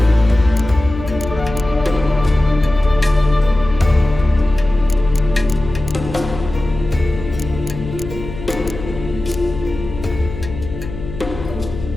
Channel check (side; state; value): left; noise; hum, 10 dB below the sound